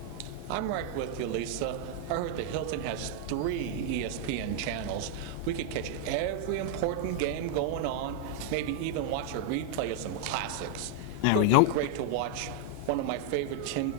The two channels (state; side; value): different; both; correlation 0.00